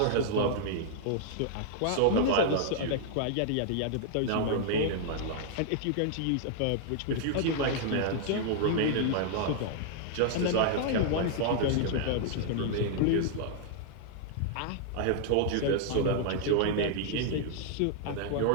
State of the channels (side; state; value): both; different; correlation -0.01